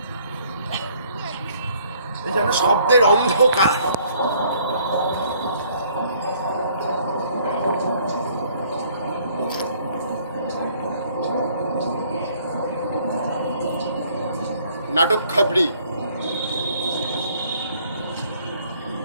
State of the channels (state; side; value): inverted; both; correlation -0.61